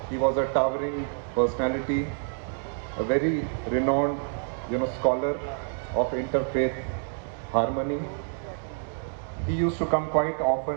He was a towering personality, a very renowned, scholar of interfaith harmony. He used to come quite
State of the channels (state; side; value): silent; left; 60 dB below the other